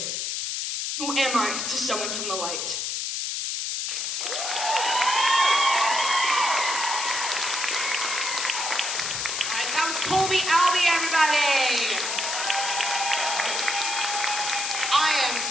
Who am I to someone from the light? All right, that was Colby Albee, everybody. I am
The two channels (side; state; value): left; noise; hiss, 2 dB below the sound